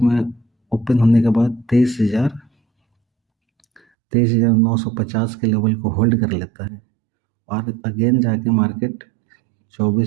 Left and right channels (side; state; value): left; drops out; at 3.8 s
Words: ओपन होने के बाद 23,950 के लेवल को होल्ड कर लेता है और अगेन जाके मार्केट